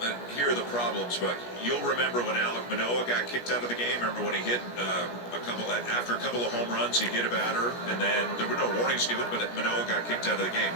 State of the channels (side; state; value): right; late; 17 ms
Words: Here are the problems, but you'll remember when Alek Manoah got kicked out of the game. Remember when he hit after a couple of home runs, he hit a batter, and then there were no warnings given, but Manoah got kicked out of the game.